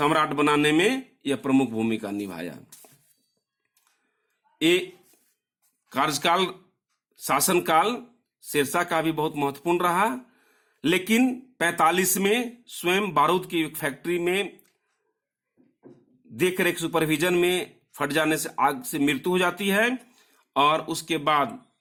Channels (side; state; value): both; identical; correlation 1.00